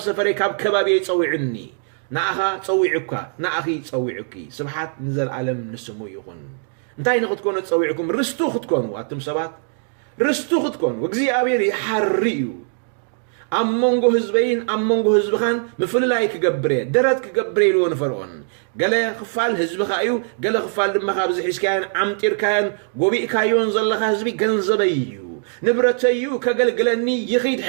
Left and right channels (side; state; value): left; silent; 65 dB below the other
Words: ሰፈረይ ካብ ከባቢይ ፀውዕኒ ንኣኻ ፀዊዑካ ንኣኺ ፀዊዑኪ ስብሓት ንዘለዓለም ንስሙ ይኹን እንታይ ንክትኮኑ ፀዊዕኩም ርስቱ ክትኮኑ ኣቱም ሰባት ርስቱ ክትኮኑ እግዚአብሔር ይሓሪ እዩ ኣብ መንጎ ህዝበይን ኣብ መንጎ ህዝብኻን ምፍልላይ ክገብረ ደረት ክገብረ ኢልዎ ንፈርዖን ገለ ክፋል ህዝብኻ እዩ ገለ ክፋል ድማ ካብ ዝሒዝካያን ዓምጢርካያን ጎቢእካዮን ዘለኻ ህዝቢ ገንዘበይ እዩ ንብረተዩ ከገልግለኒ ይኺድ